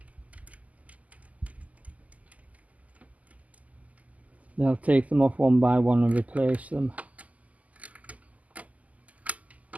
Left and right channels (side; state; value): left; late; 0.074 ms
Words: Then I'll take them off one by one and replace them.